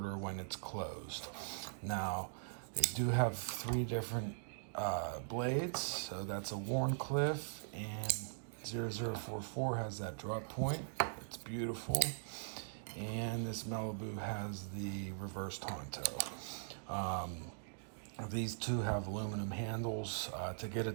when it's closed. Now, they do have three different blades, so that's a Warncliffe, and 0044 has that drop point. It's beautiful. And this Malibu has the reverse Tonto. These two have aluminum handles. To get a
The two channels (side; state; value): left; silent; digital silence